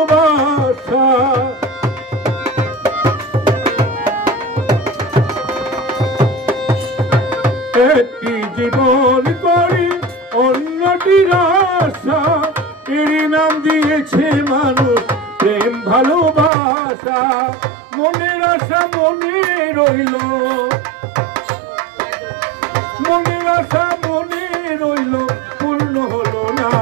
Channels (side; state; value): left; drops out; at 16.5 s